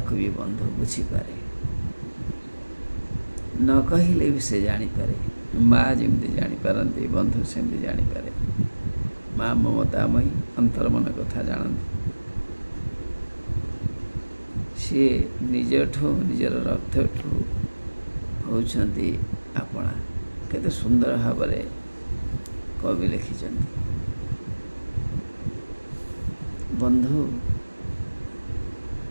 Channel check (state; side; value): inverted; both; correlation -1.00